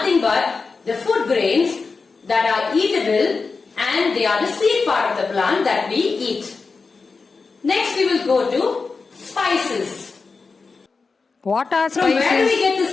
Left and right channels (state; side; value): quieter; right; 4.5 dB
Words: but the food grains that are eatable and they are the seed part of the plant that we eat. Next we will go to spices. What are From where do we spices? get the